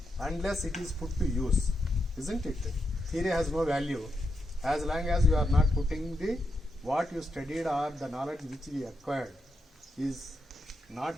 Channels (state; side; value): normal; both; correlation 0.83